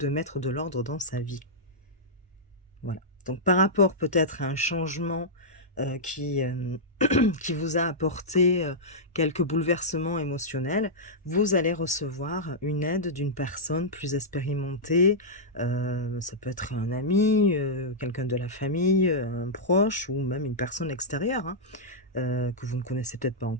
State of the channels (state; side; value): normal; both; correlation -0.10